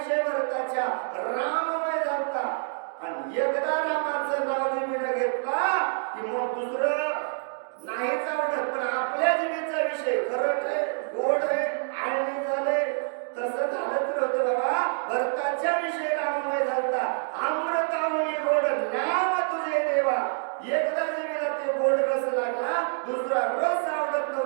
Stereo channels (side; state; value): left; silent; digital silence